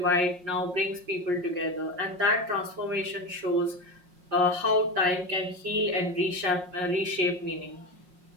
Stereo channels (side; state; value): left; late; 5.5 ms